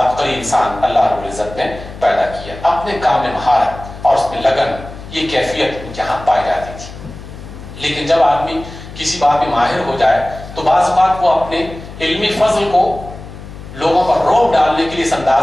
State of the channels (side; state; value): left; noise; hum, 14 dB below the sound